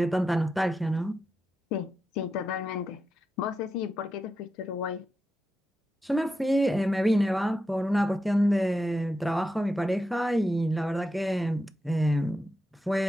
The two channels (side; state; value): both; normal; correlation 0.89